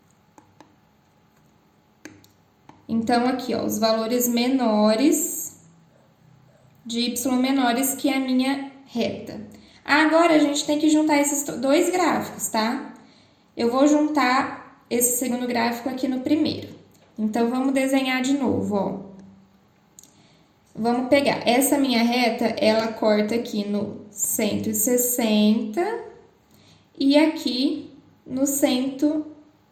Então, aqui, ó, os valores menores de y menores que a minha reta. Agora, a gente tem que juntar esses dois gráficos, tá? Eu vou juntar esse segundo gráfico aqui no primeiro. Então, vamos desenhar de novo, ó. Vamos pegar essa minha reta, ela corta aqui no 160 e aqui no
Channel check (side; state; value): both; identical; correlation 1.00